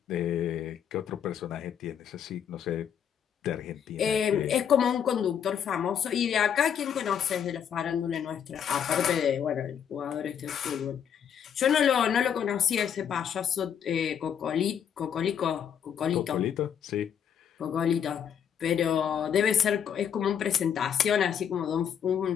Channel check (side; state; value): right; quieter; 8.4 dB